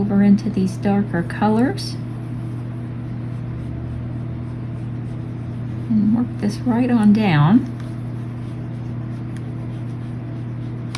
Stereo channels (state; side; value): identical; both; correlation 1.00